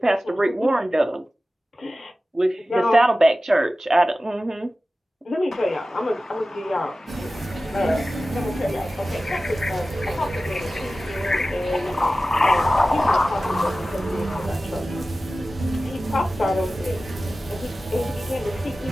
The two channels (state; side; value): normal; both; correlation 0.95